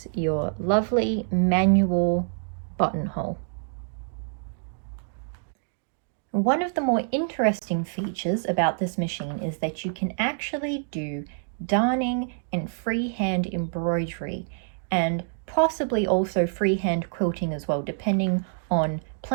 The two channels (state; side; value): silent; left; digital silence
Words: your lovely manual buttonhole. One of the more interesting features about this machine is that you can actually do darning and freehand embroidery, and possibly also freehand quilting as well, depending on